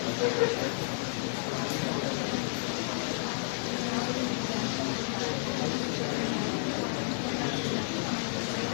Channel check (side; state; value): right; silent; digital silence